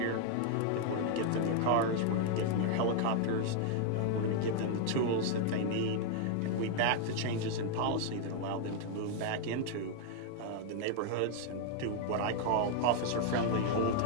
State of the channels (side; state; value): both; different; correlation 0.00